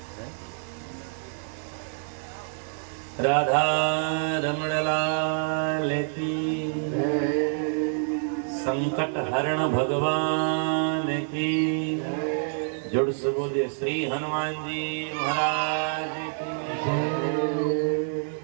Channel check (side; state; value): left; silent; 60 dB below the other